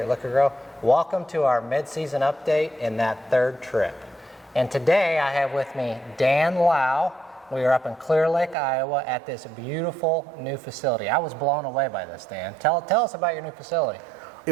Liqui-Grow. Welcome to our mid-season update in that third trip. And today I have with me Dan Lau. We are up in Clear Lake, Iowa at this beautiful new facility. I was blown away by this, Dan. Tell us about your new facility.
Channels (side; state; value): left; drops out; at 8.6 s